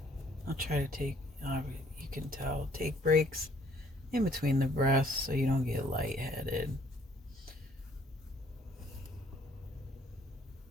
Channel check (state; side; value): normal; both; correlation 0.61